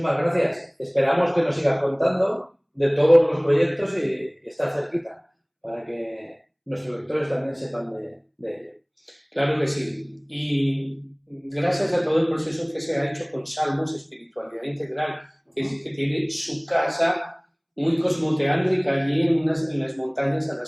gracias. Esperamos que nos sigas contando de todos los proyectos y estar cerquita para que nuestros lectores también sepan de ello. Claro que sí. Y gracias a todo el proceso que se ha hecho con Salmos, Espiritualidad Integral, que tiene su casa muy cosmoteántrica allí en las montañas a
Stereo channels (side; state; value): both; identical; correlation 1.00